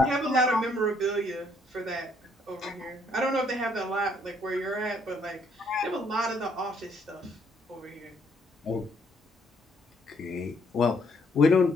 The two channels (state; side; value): normal; both; correlation 0.68